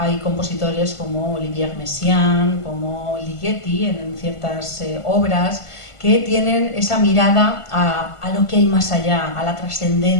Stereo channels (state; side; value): late; right; 1.5 ms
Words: compositores como Olivier Messiaen, como Ligeti en ciertas obras, que tienen esa mirada a lo que hay más allá, a la